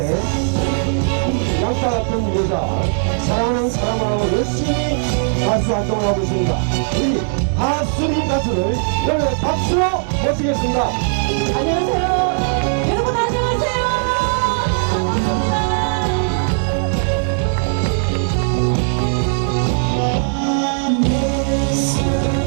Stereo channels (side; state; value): left; silent; digital silence